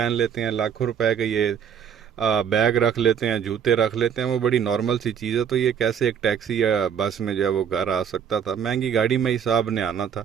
لیتے ہیں, لاکھوں روپے کا یہ بیگ رکھ لیتے ہیں, جوتے رکھ لیتے ہیں, وہ بڑی نارمل سی چیز ہے. تو یہ کیسے ایک ٹیکسی یا بس میں جو ہے وہ گھر آ سکتا تھا؟ مہنگی گاڑی میں ہی صاحب نے آنا تھا.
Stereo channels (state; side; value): quieter; left; 8.0 dB